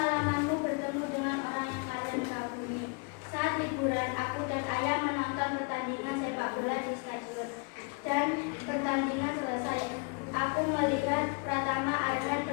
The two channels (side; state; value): right; quieter; 33.4 dB